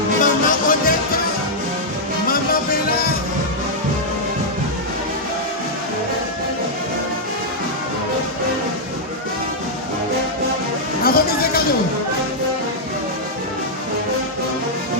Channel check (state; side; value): normal; both; correlation -0.06